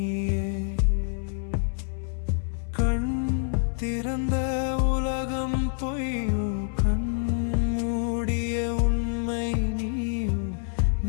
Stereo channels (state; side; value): silent; right; 60 dB below the other